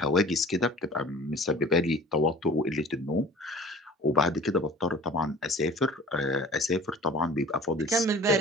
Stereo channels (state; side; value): normal; both; correlation 0.44